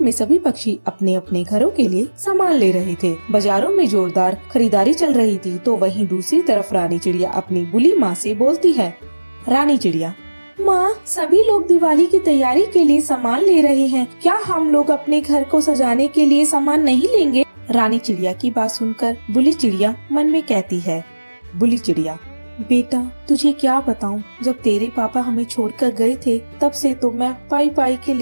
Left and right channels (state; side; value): inverted; both; correlation -1.00